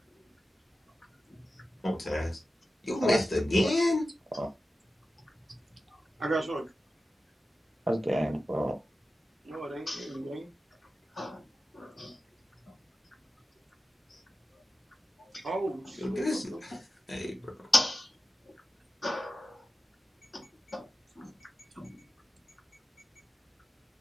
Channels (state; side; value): normal; both; correlation 0.93